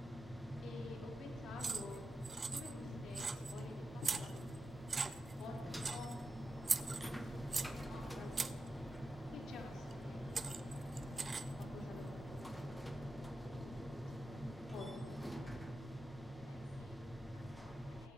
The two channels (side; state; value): both; normal; correlation 0.89